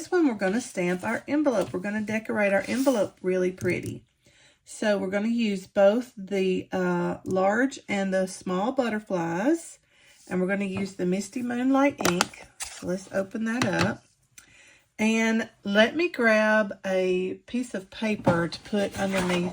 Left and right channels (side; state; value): both; identical; correlation 1.00